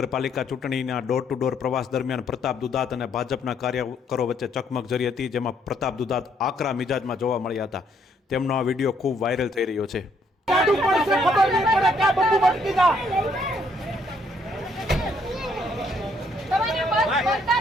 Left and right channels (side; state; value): both; normal; correlation 0.69